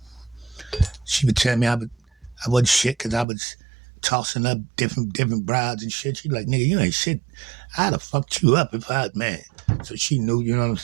She would tell me I wasn't shit because I was tossing up different brides and shit. She like, nigga, you ain't shit. I'd have fucked you up if I, man. So she knew, you know what I'm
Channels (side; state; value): left; drops out; at 3.2 s